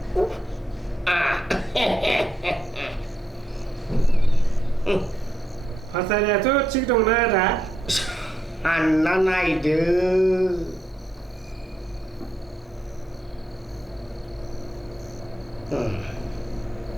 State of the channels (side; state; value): both; normal; correlation 0.80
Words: फाथारियाथ' थिग दंना आदा सानना नायदो